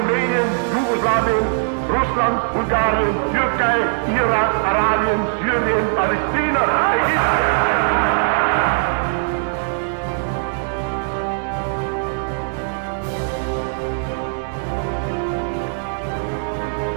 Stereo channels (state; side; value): silent; left; 66 dB below the other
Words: Jugoslawien, Russland, Bulgarien, Türkei, Irak, Arabien, Syrien, Palästina, Ägypten.